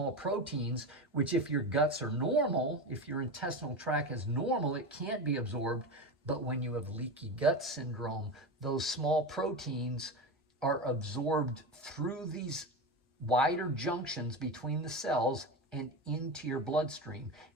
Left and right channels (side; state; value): both; normal; correlation 0.22